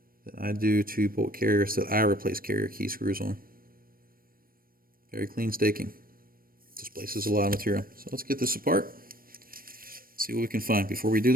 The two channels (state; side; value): late; left; 0.42 ms